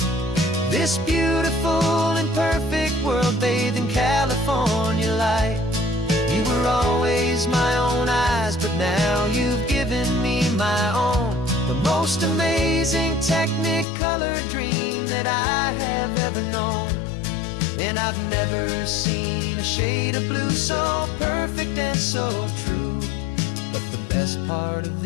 this beautiful and perfect world bathed in California light. You were always my own eyes, but now you've given me my own. The most amazing technicolor dream that I have ever known. And I've never seen a shade of blue so perfect and so true. But the best part of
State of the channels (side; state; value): right; drops out; at 13.9 s